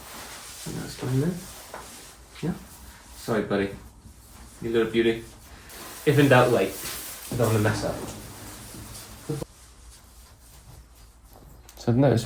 And that's going there. Yeah. Sorry, buddy. You little beauty. If in doubt, wait. I don't want to mess up. So I've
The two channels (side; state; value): both; identical; correlation 1.00